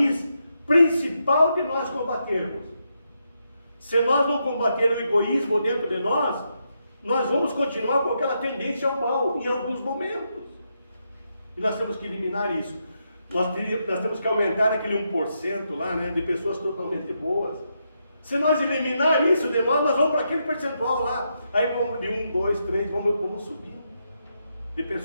principal de nós combatermos. Se nós não combater o egoísmo dentro de nós vamos continuar com aquela tendência ao mal em alguns momentos. E nós temos que eliminar isso. Nós temos que aumentar aquele 1% lá, né, de pessoas totalmente boas. Se nós eliminar isso de nós vamos para aquele percentual lá. Aí vamos de 1, 2, 3, vamos subindo. De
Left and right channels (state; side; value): inverted; both; correlation -0.82